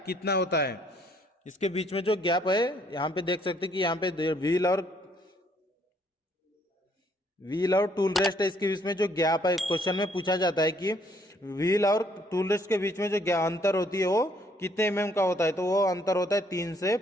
कितना होता है? इसके बीच में जो गैप है यहाँ पे देख सकते हैं कि यहाँ पे व्हील और टूल रेस्ट है, इसके बीच में जो गैप है क्वेश्चन में पूछा जाता है कि व्हील और टूल रेस्ट के बीच में जो अंतर होती है वो कितने mm का होता है? तो वो अंतर होता है 3 से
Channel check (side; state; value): both; normal; correlation 0.66